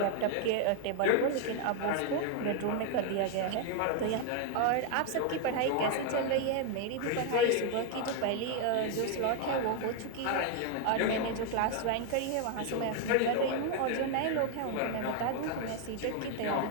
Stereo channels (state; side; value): different; both; correlation 0.00